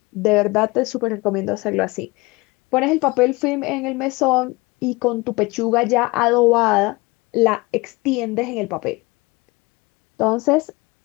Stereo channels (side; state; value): right; quieter; 23.9 dB